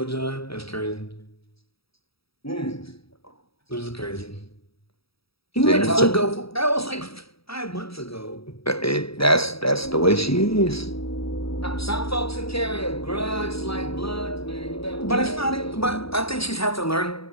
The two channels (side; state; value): right; late; 0.76 ms